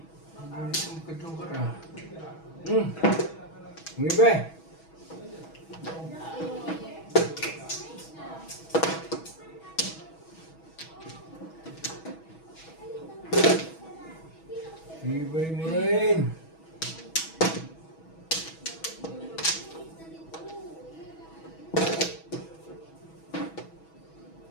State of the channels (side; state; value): right; late; 6.2 ms